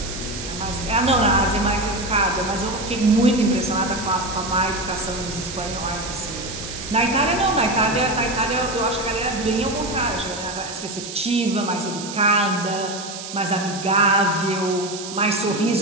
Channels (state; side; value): noise; right; hiss, 10 dB below the sound